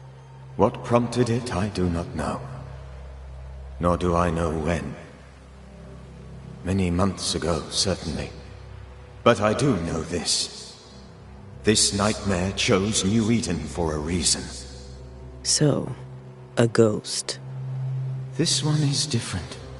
What prompted it, I do not know. Nor do I know when. Many months ago, certainly. But I do know this. This nightmare chose New Eden for a reason. So, a ghost. This one is different.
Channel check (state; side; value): identical; both; correlation 1.00